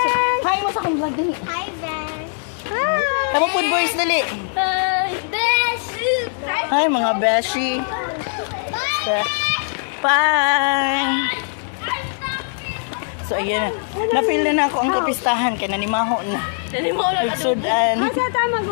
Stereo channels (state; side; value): silent; right; digital silence